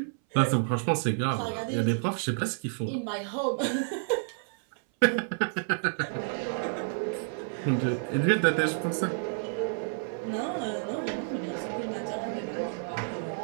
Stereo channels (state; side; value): silent; left; 58 dB below the other